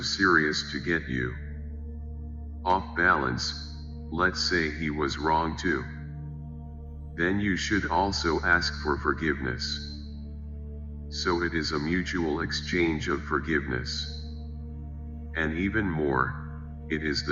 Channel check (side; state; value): both; identical; correlation 1.00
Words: serious to get you off balance, let's say he was wrong too, then you should also ask for forgiveness. So it is a mutual exchange of forgiveness. And even more, it is